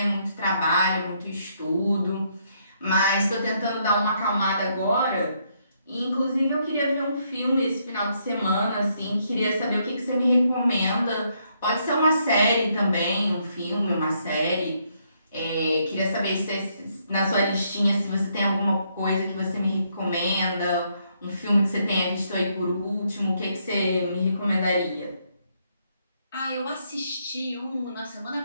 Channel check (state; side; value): inverted; both; correlation -0.74